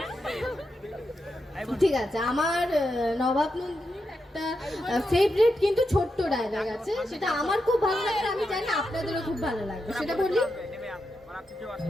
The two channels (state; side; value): normal; both; correlation 0.86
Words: ঠিক আছে। আমার নবাব নন্দিনীর একটা ফেভারিট কিন্তু ছোট্ট ডায়লগ আছে, সেটা আমার খুব ভালো লাগে, আমি জানি আপনাদেরও খুব ভালো লাগবে। সেটা বলি।